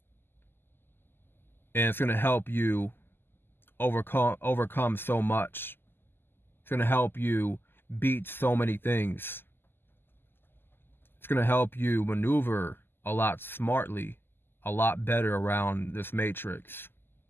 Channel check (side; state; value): right; late; 0.10 ms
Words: And it's going to help you overcome so much. It's going to help you beat so many things. It's going to help you maneuver a lot smartly, a lot better around this matrix.